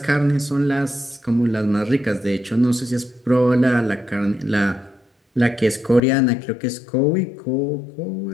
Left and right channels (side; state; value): right; drops out; at 6.0 s